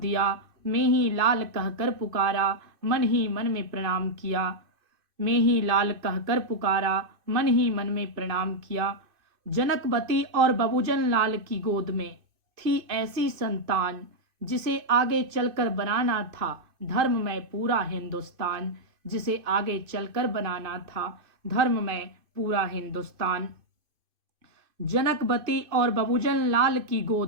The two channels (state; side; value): late; left; 2.5 ms